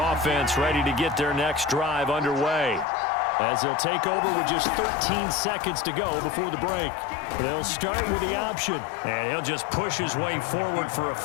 ready to get their next drive underway, as they'll take over with just 13 seconds to go before the break. They'll start with the option, and he'll just push his way forward for a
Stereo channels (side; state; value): right; drops out; at 2.9 s